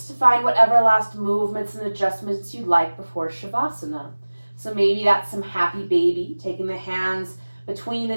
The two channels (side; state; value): both; inverted; correlation -1.00